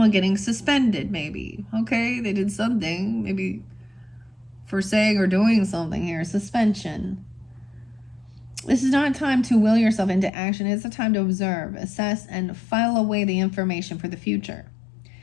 getting suspended, maybe. Okay, they did something. Maybe for saying or doing something here. Suspension. This is not a time to will yourself into action. It's a time to observe, assess, and file away the information for the future.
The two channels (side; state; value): right; drops out; at 10.3 s